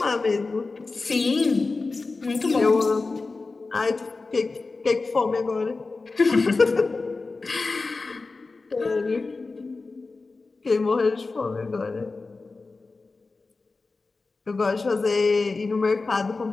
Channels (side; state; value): right; quieter; 3.8 dB